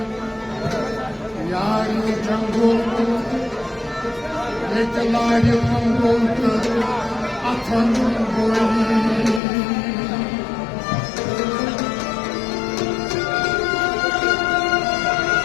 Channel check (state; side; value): drops out; right; at 9.4 s